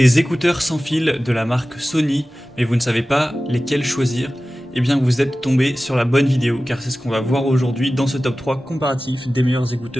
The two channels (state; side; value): normal; both; correlation 0.96